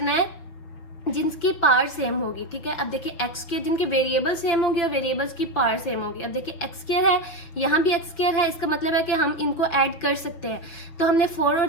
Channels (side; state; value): right; late; 5.9 ms